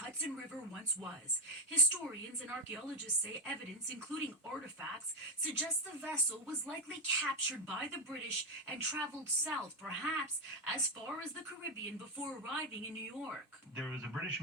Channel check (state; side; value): normal; both; correlation 0.10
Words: River once was. Historians and archaeologists say evidence, including artifacts, suggests the vessel was likely captured by the British and traveled south, perhaps as far as the Caribbean, before arriving in New York. There was a British